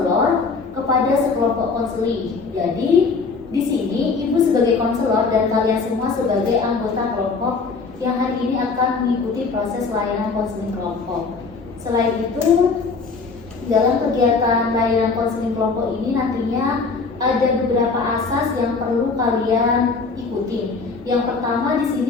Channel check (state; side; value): quieter; right; 4.5 dB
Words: kepada sekelompok konseling. Jadi, di sini Ibu sebagai konselor dan kalian semua sebagai anggota kelompok yang hari ini akan mengikuti proses layanan konseling kelompok. Selain itu, dalam kegiatan layanan konseling kelompok ini nantinya ada beberapa asas yang perlu kalian ikuti. Yang pertama di